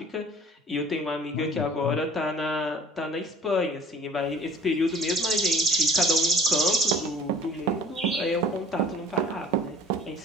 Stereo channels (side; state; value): both; normal; correlation 0.48